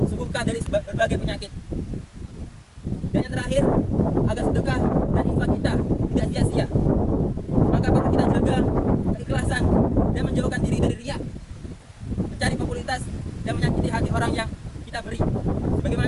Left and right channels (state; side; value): identical; both; correlation 1.00